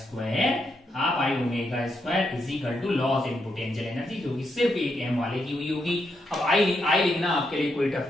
square is equal to loss in potential energy, जो कि सिर्फ एक m वाले की हुई होगी। अब आई लिखना आपके लिए कोई टफ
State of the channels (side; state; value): both; normal; correlation 0.81